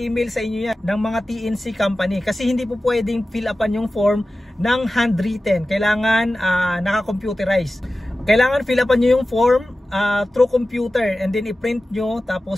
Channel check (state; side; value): normal; both; correlation 0.95